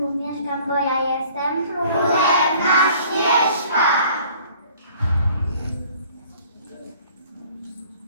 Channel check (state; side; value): inverted; both; correlation -0.54